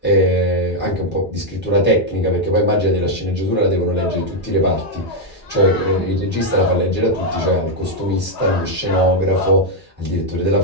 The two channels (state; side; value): normal; both; correlation 0.00